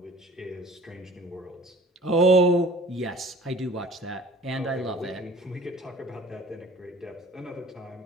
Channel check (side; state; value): both; normal; correlation 0.47